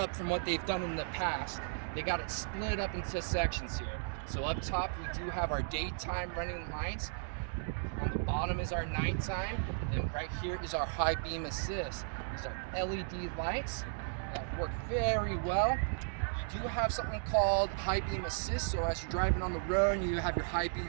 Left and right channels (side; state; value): left; silent; digital silence